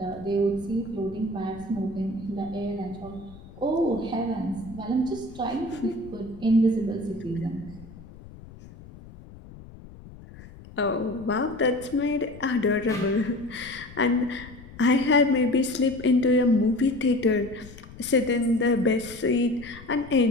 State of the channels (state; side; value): noise; left; rumble, 18 dB below the sound